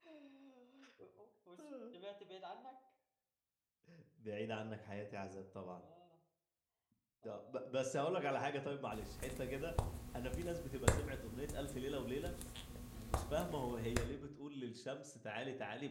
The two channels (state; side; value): identical; both; correlation 1.00